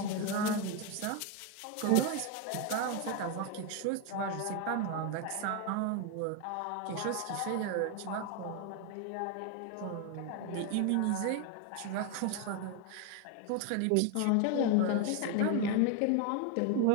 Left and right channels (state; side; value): different; both; correlation 0.01